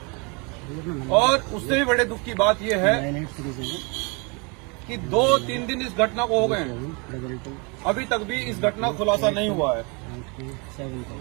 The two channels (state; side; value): quieter; left; 31.0 dB